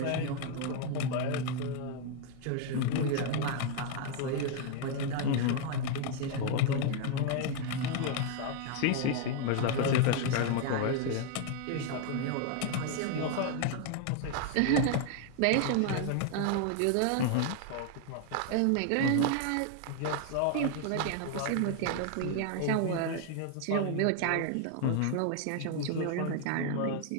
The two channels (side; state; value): both; different; correlation 0.00